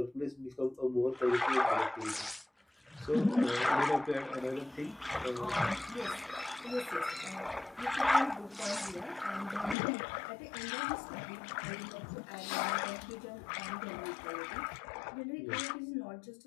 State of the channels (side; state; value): right; drops out; at 9.8 s